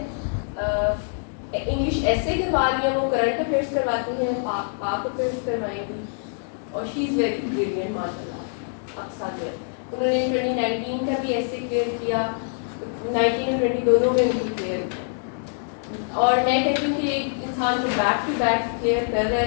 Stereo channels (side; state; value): right; silent; digital silence